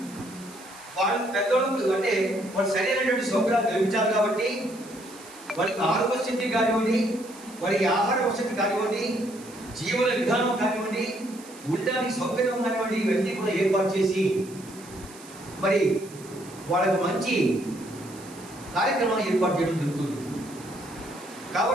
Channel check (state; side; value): noise; right; hiss, 20 dB below the sound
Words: వాళ్ళు పెద్దోళ్ళకు అంటే వాళ్ళు సరైనటువంటి సౌకర్యాలు కల్పించాలి. కాబట్టి వారికి ఆరోగ్య స్థితి కానివ్వండి, వారికి ఆహార వసతి కానివ్వండి, జీవన విధానం కానివ్వండి, ఉండడానికి సౌకర్యం కానివ్వండి, ఇవన్నీ కూడా ఏర్పాటు చేసి మరి వాళ్ళకు మంచి కార్యక్రమాలు ఏర్పాటు చేయడం జరుగుతుంది.